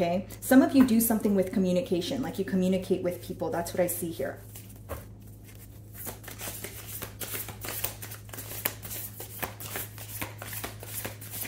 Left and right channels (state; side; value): identical; both; correlation 1.00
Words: Some of you do something with communication, like you communicate with people. That's what I see here.